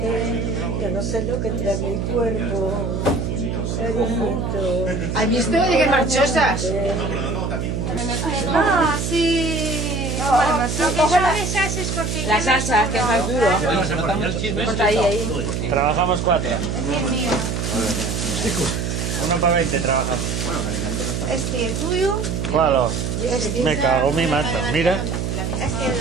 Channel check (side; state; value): right; noise; hum, 2 dB below the sound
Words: yo no sé lo que trae mi cuerpo, cariñito. ¿Has visto? Oye, qué marchosas. Ah, sí. Bueno, lo que son esas es porque... La salsa, que es más duro. Ponte ahí. Trabajamos 4. Es mío. Uno para 20 trabajamos. Este, el tuyo. ¿Cuál? Me cago en mi manta. Mira. Este, el